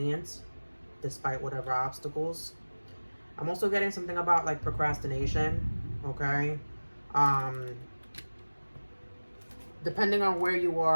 despite whatever obstacles. I'm also getting something about like procrastination, okay? Depending on where you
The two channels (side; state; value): both; inverted; correlation -1.00